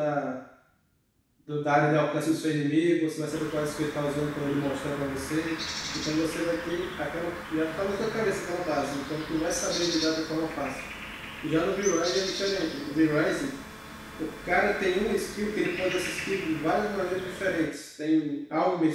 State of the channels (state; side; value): identical; both; correlation 1.00